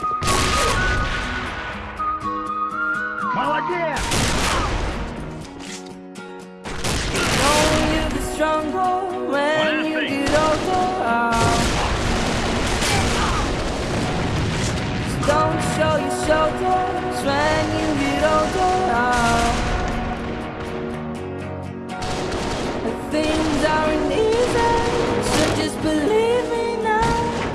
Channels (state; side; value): identical; both; correlation 1.00